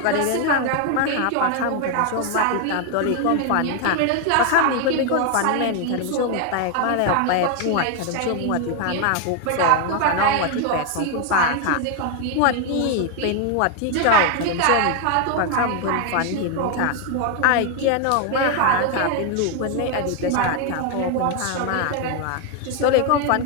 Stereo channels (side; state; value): both; different; correlation 0.01